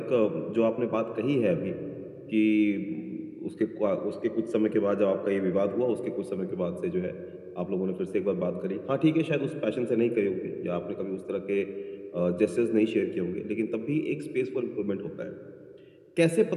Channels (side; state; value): both; identical; correlation 1.00